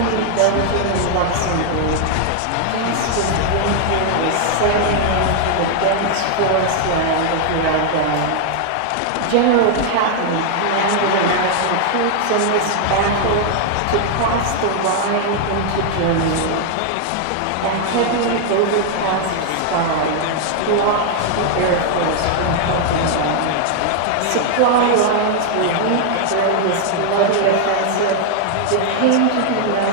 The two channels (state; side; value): different; both; correlation 0.00